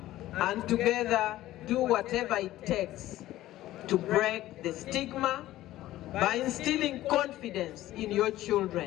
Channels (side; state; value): right; quieter; 15.0 dB